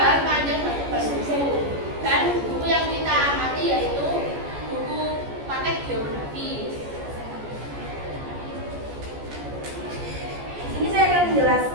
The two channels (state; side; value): late; left; 14 ms